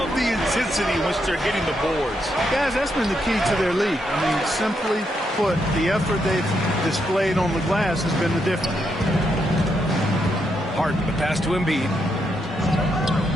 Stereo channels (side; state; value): both; normal; correlation 0.80